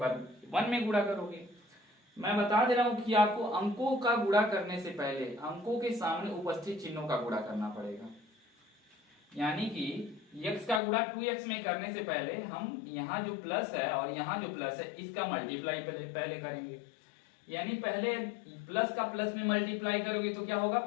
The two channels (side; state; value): right; drops out; at 10.8 s